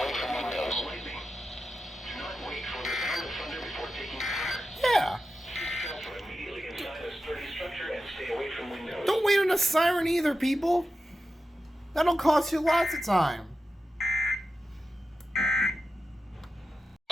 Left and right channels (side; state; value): both; normal; correlation 0.91